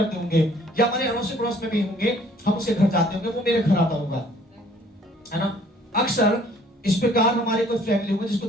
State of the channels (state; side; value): normal; both; correlation 0.58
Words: होंगे, या हमारे अड़ोस पड़ोस में भी होंगे, हम उसके घर जाते होंगे, वो मेरे घर आता होगा, है ना? अक्सर इस प्रकार हमारे कोई फैमिली होगा जिसको